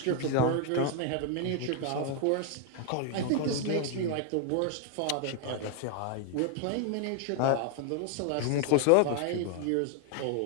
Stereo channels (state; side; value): different; both; correlation 0.00